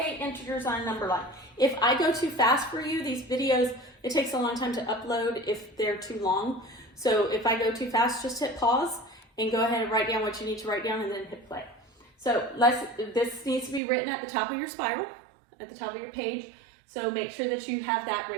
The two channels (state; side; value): drops out; left; at 13.8 s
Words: integers on a number line. If I go too fast for you, these videos, it takes a long time to upload if they're too long. So if I go too fast, just hit pause and go ahead and write down what you need to write down and then hit play. So this needs to be written at the top of your spiral, at the top of your page. So make sure that you have that